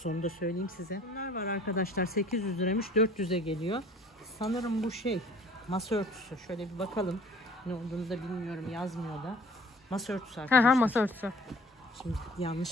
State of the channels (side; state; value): both; normal; correlation 0.50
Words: onu da söyleyeyim size. Bunlar var arkadaşlar 800 liraymış 400'e geliyor. Sanırım bu şey masa örtüsü. Şöyle bir bakalım. Ne olduğunu da bilmiyorum, yazmıyor da. Masa örtüsü arkadaşlar. Masa örtüsü. Şimdi